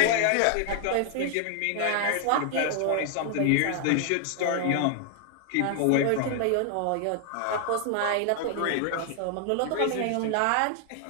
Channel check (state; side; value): different; both; correlation 0.00